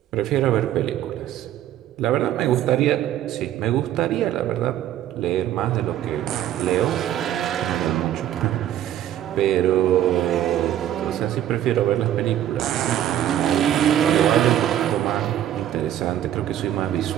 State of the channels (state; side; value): quieter; left; 11.7 dB